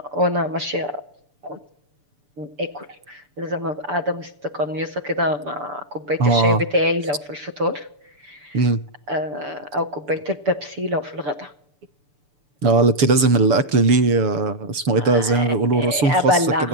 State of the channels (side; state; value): left; late; 7.1 ms